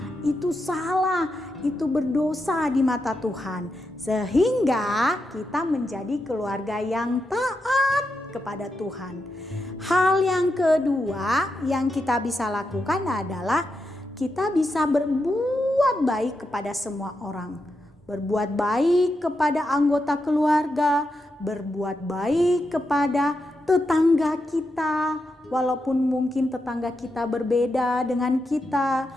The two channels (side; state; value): both; normal; correlation 0.86